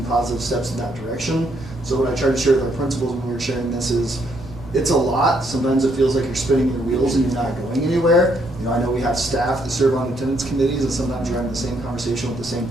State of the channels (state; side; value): normal; both; correlation 0.72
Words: positive steps in that direction. So what I try to share with our principals when we were sharing this is, it's a lot. Sometimes it feels like you're spinning your wheels and you're not going anywhere. I know we have staff that serve on attendance committees, and sometimes you're having the same conversation with the same